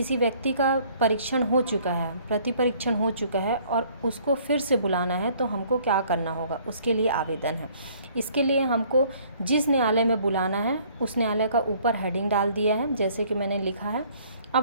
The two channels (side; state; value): both; inverted; correlation -0.58